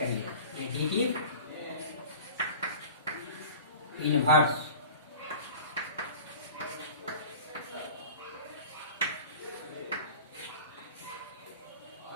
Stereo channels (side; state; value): both; inverted; correlation -0.40